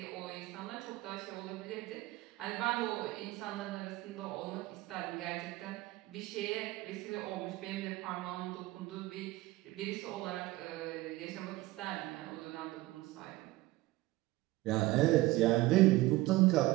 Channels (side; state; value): left; quieter; 18.8 dB